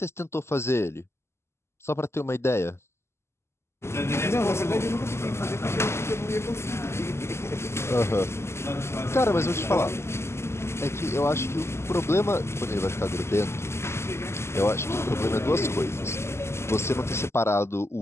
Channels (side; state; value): right; late; 0.13 ms